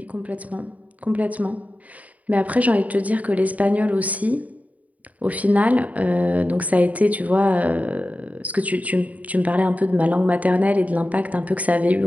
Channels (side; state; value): left; late; 0.071 ms